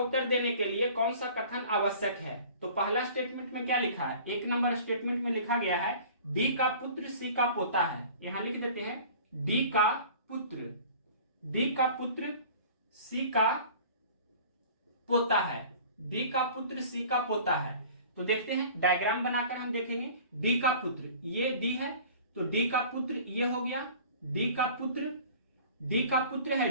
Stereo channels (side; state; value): both; inverted; correlation -0.45